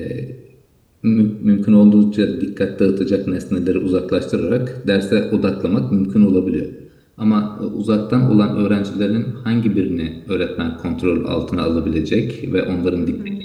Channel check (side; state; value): both; identical; correlation 1.00